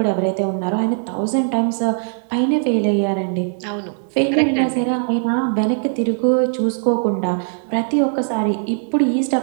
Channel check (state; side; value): silent; left; digital silence